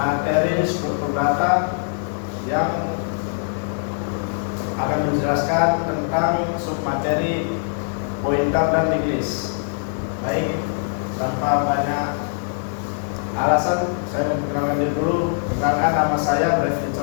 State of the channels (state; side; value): silent; right; 64 dB below the other